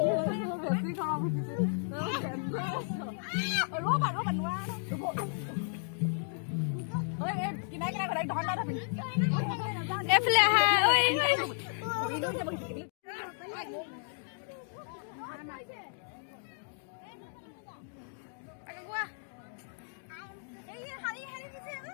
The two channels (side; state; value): right; silent; digital silence